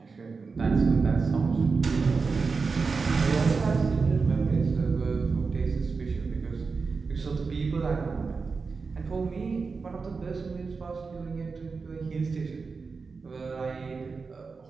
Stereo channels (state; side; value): quieter; left; 4.7 dB